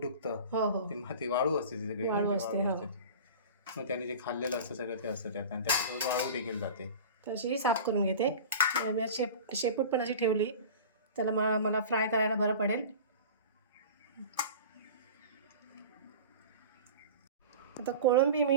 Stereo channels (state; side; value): inverted; both; correlation -0.36